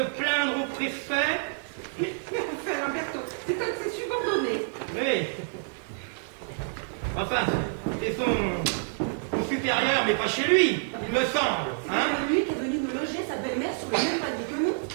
au préfet. Enfin, Lamberto, c'est un de ses subordonnés. Oui. Enfin, c'est son supérieur, mais pas chez lui, il me semble. Hein? C'est lui qui est venu nous loger sa belle-mère sur le même palier que nous.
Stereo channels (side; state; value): left; silent; 59 dB below the other